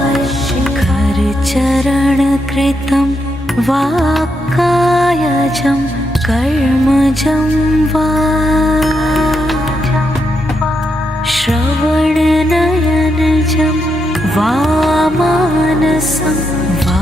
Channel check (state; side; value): normal; both; correlation 0.81